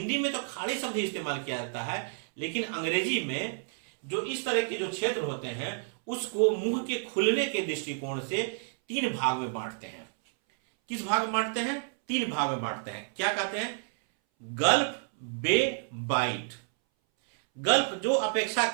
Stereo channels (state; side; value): silent; left; 58 dB below the other